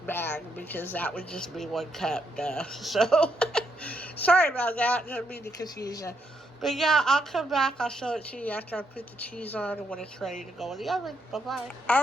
bag because that would just be 1 cup. Duh. So sorry about that. Didn't mean to confuse you. But yeah, I'll come back. I'll show it to you after I put the cheese on and when it's ready to go in the oven. Bye-bye.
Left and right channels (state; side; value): normal; both; correlation 0.77